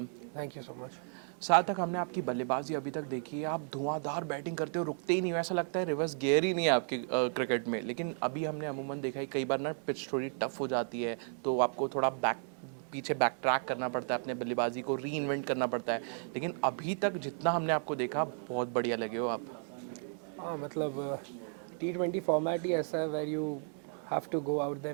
Thank you so much. सार्थक, हमने आपकी बल्लेबाजी अभी तक देखी है, आप धुआंधार बैटिंग करते हो, रुकते ही नहीं हो, ऐसा लगता है रिवर्स गियर ही नहीं है आपके क्रिकेट में। लेकिन अभी हमने अमूमन देखा है कई बार ना पिच थोड़ी टफ हो जाती है, तो आपको थोड़ा पीछे बैक ट्रैक करना पड़ता है, अपने बल्लेबाजी को री इन्वेंट करना पड़ता है। लेकिन अभी तक जितना हमने आपको देखा, बहुत बढ़िया लगे हो आप। हाँ मतलब T20 फॉर्मेट ही ऐसा है where you have to go out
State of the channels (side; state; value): left; silent; 55 dB below the other